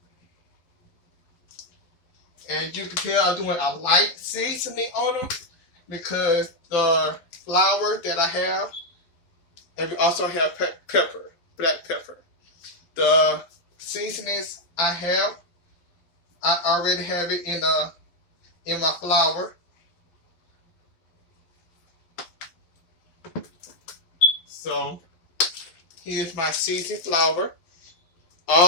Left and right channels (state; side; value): late; right; 11 ms